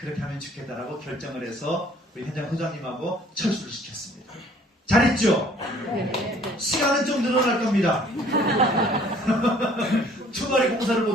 하면 좋겠다라고 결정을 해서 우리 현장 소장님하고 철수를 시켰습니다. 잘했죠? 시간은 좀 늘어날 겁니다. 주말에 공사를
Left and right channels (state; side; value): normal; both; correlation 0.57